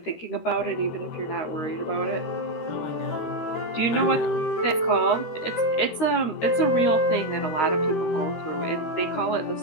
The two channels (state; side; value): late; right; 13 ms